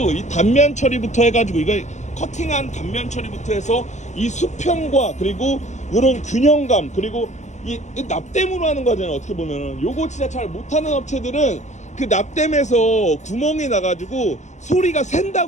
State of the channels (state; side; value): late; right; 0.34 ms